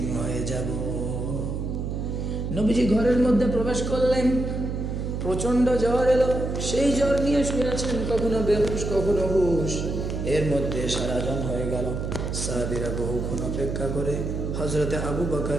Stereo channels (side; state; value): right; noise; hum, 3 dB below the sound